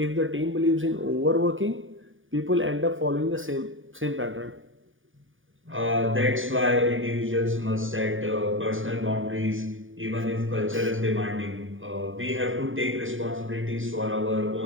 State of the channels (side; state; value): left; late; 0.58 ms